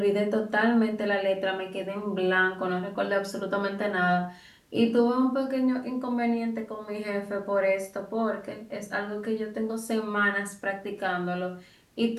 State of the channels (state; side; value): identical; both; correlation 1.00